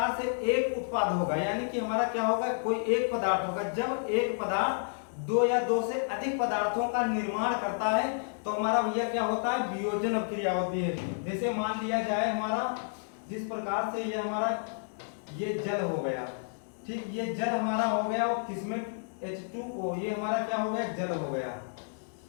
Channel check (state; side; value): silent; right; digital silence